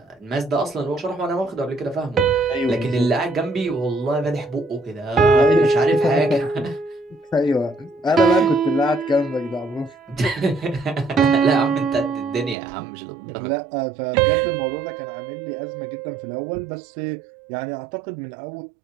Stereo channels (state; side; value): drops out; left; at 12.6 s